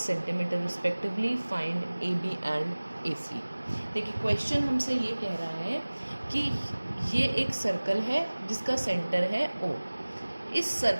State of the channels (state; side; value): inverted; both; correlation -1.00